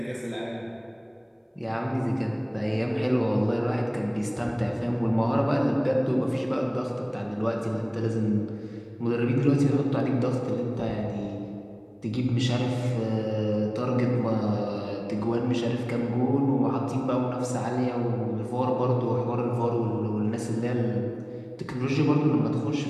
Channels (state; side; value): identical; both; correlation 1.00